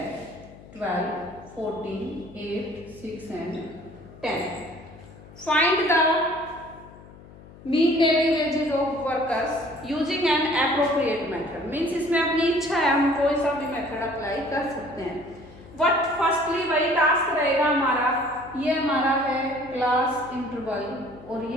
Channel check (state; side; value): noise; left; hum, 20 dB below the sound